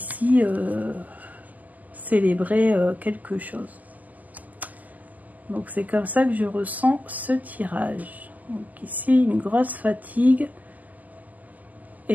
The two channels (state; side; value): late; left; 0.080 ms